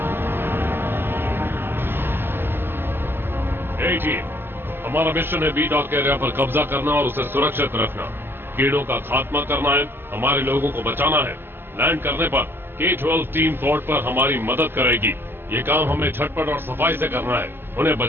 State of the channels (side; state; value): left; late; 0.10 ms